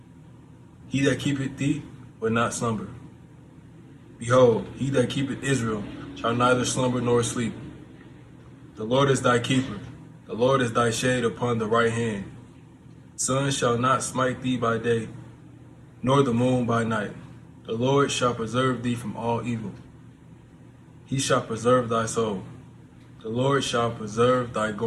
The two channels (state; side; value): identical; both; correlation 1.00